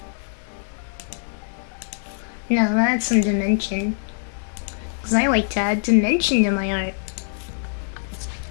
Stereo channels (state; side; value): silent; right; 59 dB below the other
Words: No, I'm gonna add some dimension. Because I like to add dimension to my art.